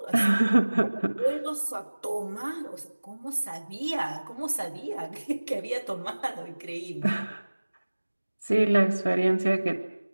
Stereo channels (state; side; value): inverted; both; correlation -1.00